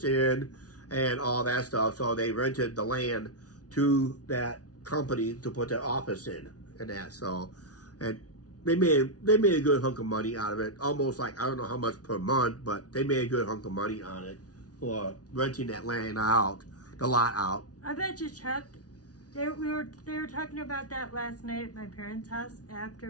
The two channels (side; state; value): right; late; 0.68 ms